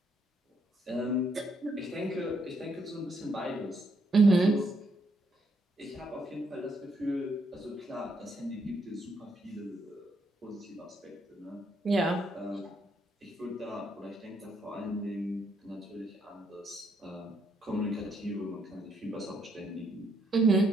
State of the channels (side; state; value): both; normal; correlation 0.74